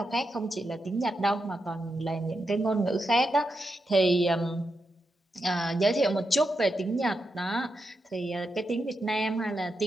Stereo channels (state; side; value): normal; both; correlation 0.86